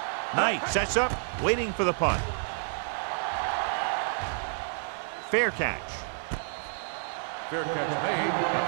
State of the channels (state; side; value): silent; left; digital silence